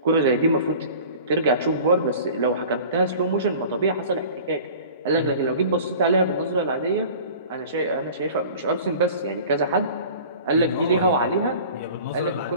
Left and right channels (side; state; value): both; inverted; correlation -0.43